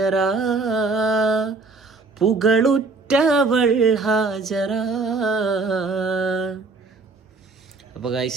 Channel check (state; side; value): quieter; left; 3.8 dB